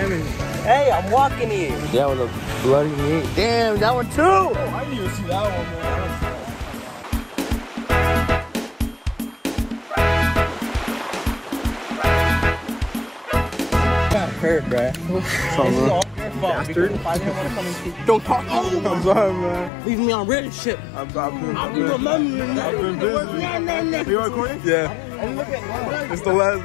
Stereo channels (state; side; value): drops out; right; at 19.7 s